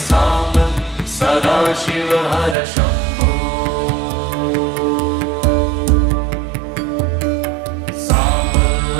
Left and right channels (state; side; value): drops out; left; at 2.6 s